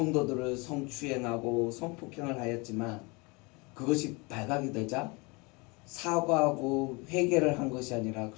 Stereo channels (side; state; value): right; quieter; 27.9 dB